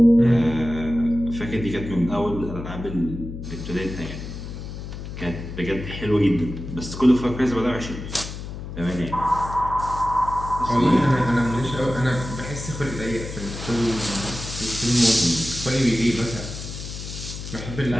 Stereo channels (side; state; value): left; noise; hum, 9 dB below the sound